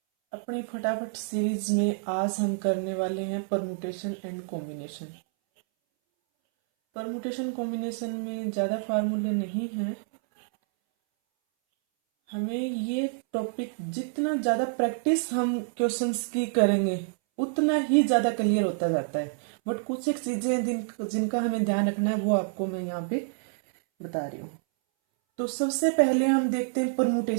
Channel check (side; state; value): left; silent; 60 dB below the other